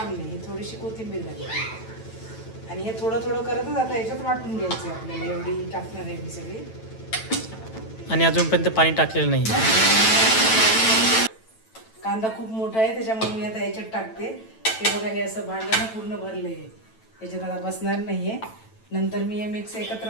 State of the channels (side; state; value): right; late; 9.0 ms